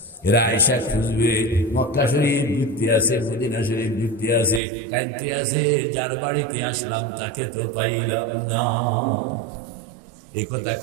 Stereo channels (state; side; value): drops out; left; at 4.6 s